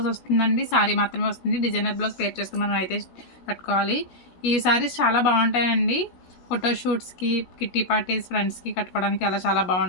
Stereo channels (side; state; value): right; late; 17 ms